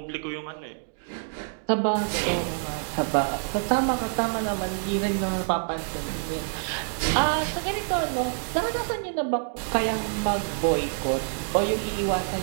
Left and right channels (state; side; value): silent; left; digital silence